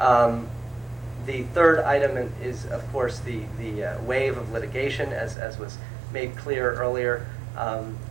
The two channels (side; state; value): left; drops out; at 5.4 s